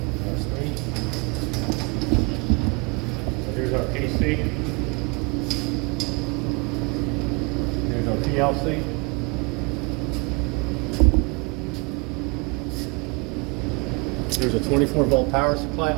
our screen. So here's our PC. Here's our PLC. There's a 24-volt power supply.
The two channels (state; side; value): quieter; left; 30.6 dB